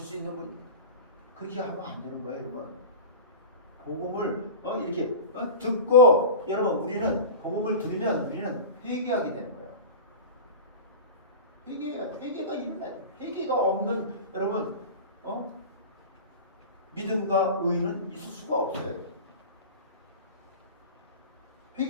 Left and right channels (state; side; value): inverted; both; correlation -0.30